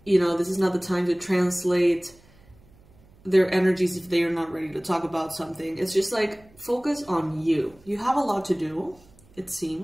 You know, this is not the time to translate their energies if they are not ready to talk about something. It's just like, focus on you. You have a lot to do, it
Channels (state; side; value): noise; right; hum, 28 dB below the sound